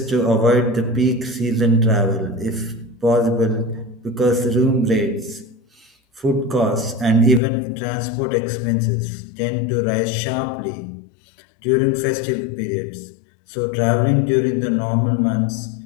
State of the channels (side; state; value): right; drops out; at 7.4 s